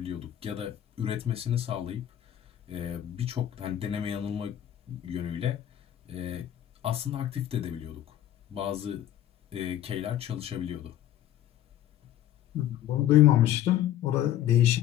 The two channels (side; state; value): right; quieter; 12.0 dB